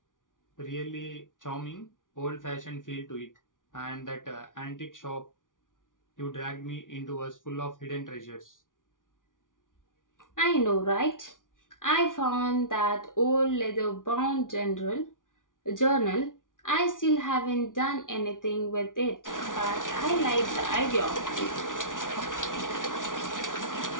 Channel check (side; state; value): right; late; 0.88 ms